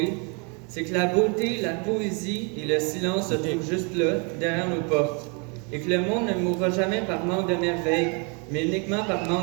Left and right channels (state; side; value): quieter; left; 34.5 dB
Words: c'est que la beauté, la poésie et le silence se trouvent juste là, derrière nos portes, et que le monde ne mourra jamais par manque de merveille, mais uniquement par